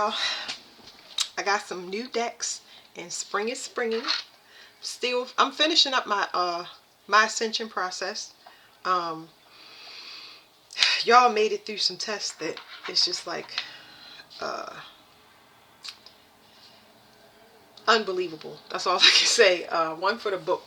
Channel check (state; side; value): identical; both; correlation 1.00